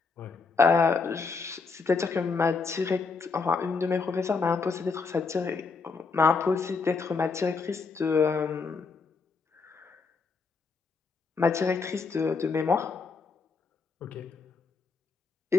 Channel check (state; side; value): quieter; right; 4.7 dB